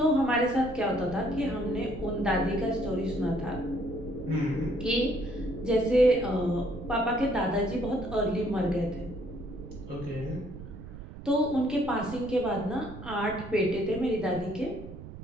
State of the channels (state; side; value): noise; right; rumble, 13 dB below the sound